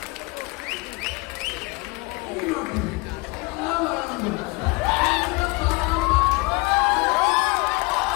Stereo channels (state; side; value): quieter; right; 25.2 dB